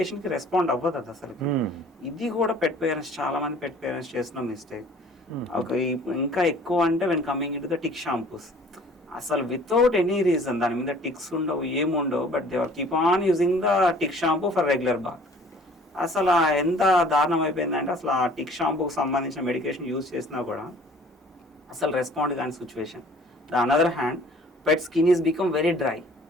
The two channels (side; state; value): both; normal; correlation 0.52